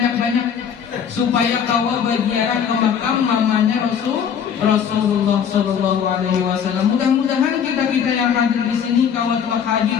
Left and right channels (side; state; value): right; quieter; 7.8 dB